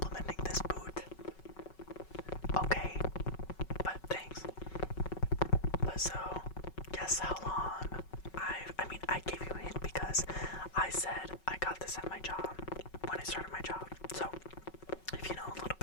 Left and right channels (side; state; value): right; late; 5.4 ms